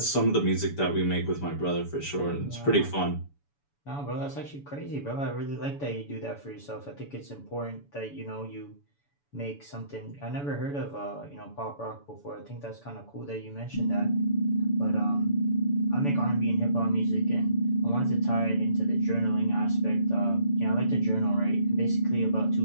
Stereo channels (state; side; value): late; right; 7.0 ms